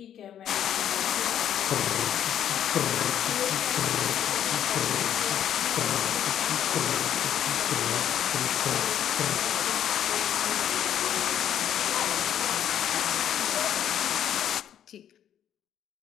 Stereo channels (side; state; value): right; quieter; 10.1 dB